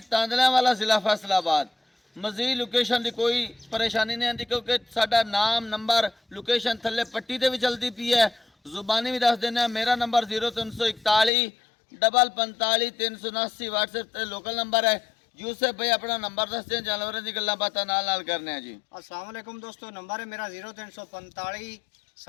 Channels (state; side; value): drops out; right; at 11.3 s